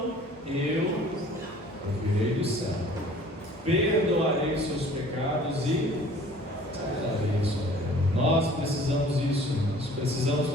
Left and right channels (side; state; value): both; normal; correlation 0.50